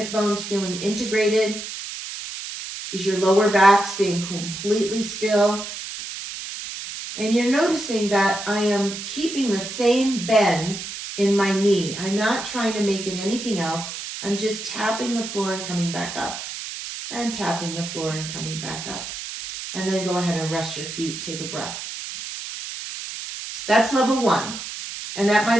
bones feeling integrated? Is your lower back staying completely still? And you're noticing that I am keeping the same bend in my knee. I'm not trying to make it anything else. I'm just tapping the floor and coming back up. And tapping the floor and coming back up. And then go ahead and rest your feet. Take a breath. That's level 1. And that might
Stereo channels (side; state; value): right; noise; hiss, 8 dB below the sound